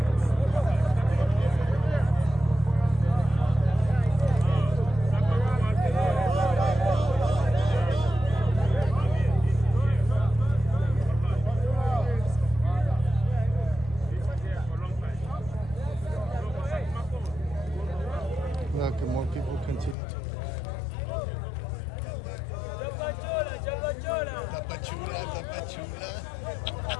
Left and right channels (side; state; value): right; drops out; at 20.0 s